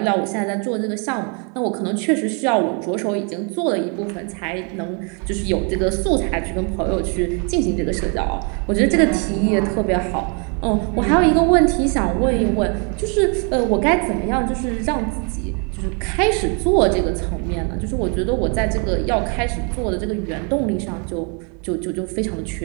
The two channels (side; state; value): left; quieter; 36.2 dB